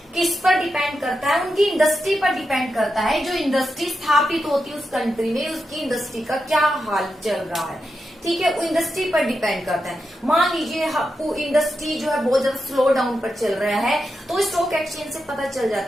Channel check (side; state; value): both; normal; correlation 0.87